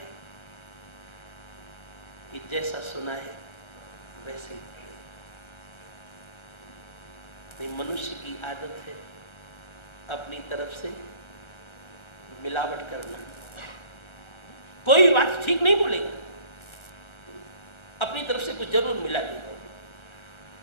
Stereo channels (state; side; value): late; right; 1.3 ms